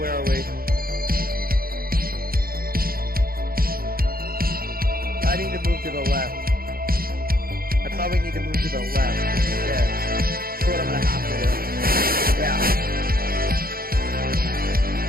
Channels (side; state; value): left; late; 0.43 ms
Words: are we? I need to move to the left. I probably need to move to the left instead. That's what I'm going to have to do. Yeah.